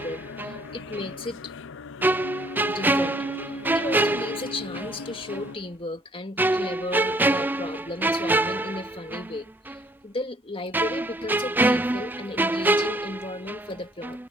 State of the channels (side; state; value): both; normal; correlation 0.61